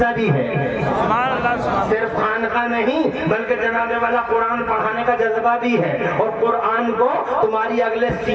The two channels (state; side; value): identical; both; correlation 1.00